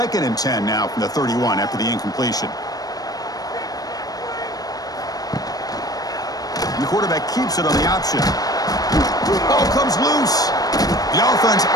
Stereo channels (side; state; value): right; late; 0.18 ms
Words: and 10 now from the 31 after the incompletion. And the quarterback keeps it on the option. Ball comes loose. The offense